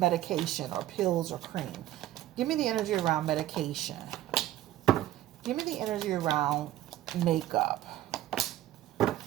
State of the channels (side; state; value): left; quieter; 13.8 dB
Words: or pills or cream? Give me the energy around medication. Give me the energy around makeup.